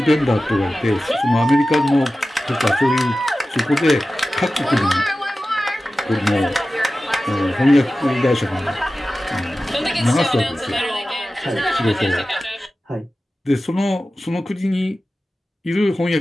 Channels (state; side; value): normal; both; correlation 0.95